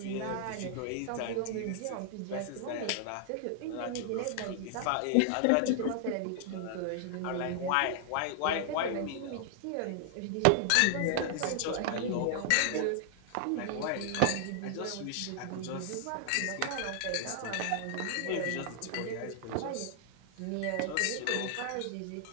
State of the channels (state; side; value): different; both; correlation 0.00